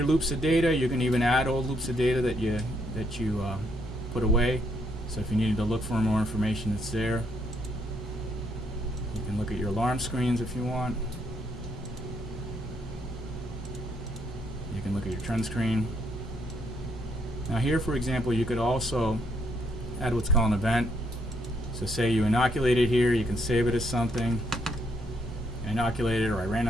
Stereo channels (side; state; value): both; normal; correlation 0.73